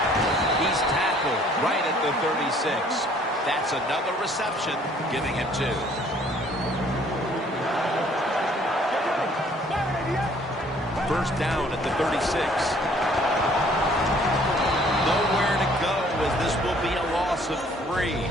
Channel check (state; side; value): normal; both; correlation 0.59